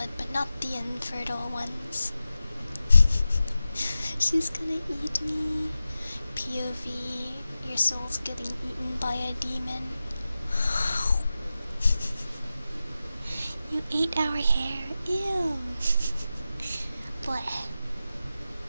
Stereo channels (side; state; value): both; inverted; correlation -0.93